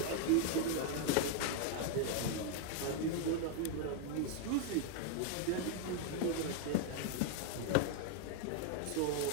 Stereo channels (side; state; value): both; different; correlation 0.00